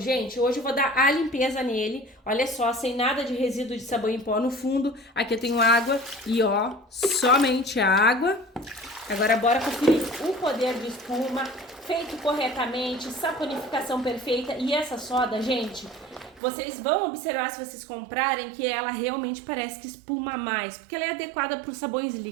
Hoje eu vou dar a limpeza nele. Olha só, sem nada de resíduo de sabão em pó no fundo. Aqui eu tenho água e, ó, somente água. Agora bora conferir o poder de espuma, feito corretamente, saponificação perfeita. E essa soda, gente, vocês vão observar se vocês comprarem que ela realmente parece que espuma mais, porque ela é adequada para os sabões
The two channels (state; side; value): drops out; left; at 16.4 s